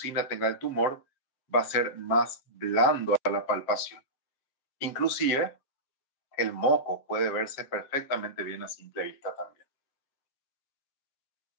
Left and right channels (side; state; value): right; late; 7.4 ms